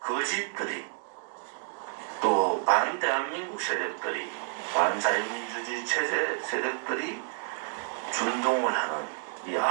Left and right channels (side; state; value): left; silent; 58 dB below the other